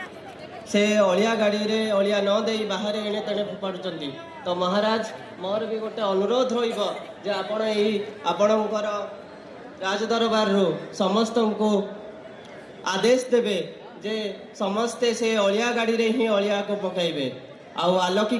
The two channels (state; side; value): identical; both; correlation 1.00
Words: से अलिया गाड़ी रे अलिया न दे बाहर एणे तेणे फोपाड़ुचंती। तो महाराज मोर भी गोटे अनुरोध रहिबो जे आपण एही आपणकर राजदरबार रो समस्त को आदेश देवे जे समस्ते से अलिया गाड़ी रे ही अलिया को पकाइबे। आउ